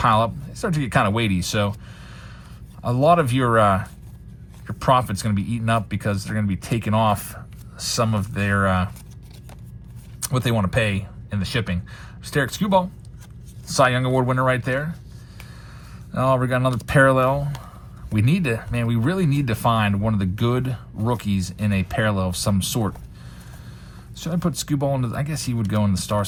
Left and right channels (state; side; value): identical; both; correlation 1.00